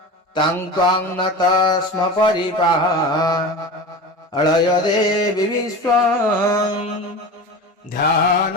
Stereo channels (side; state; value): both; normal; correlation 0.30